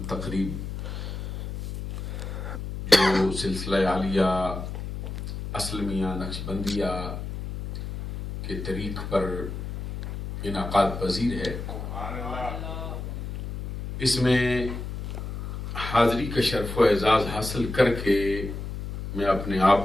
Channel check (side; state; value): left; noise; hum, 7 dB below the sound